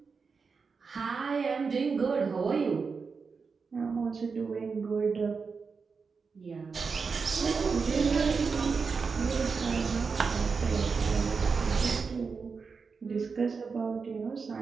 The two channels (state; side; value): quieter; left; 5.1 dB